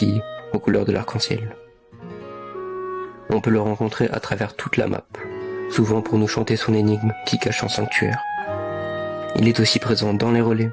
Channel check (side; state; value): both; identical; correlation 1.00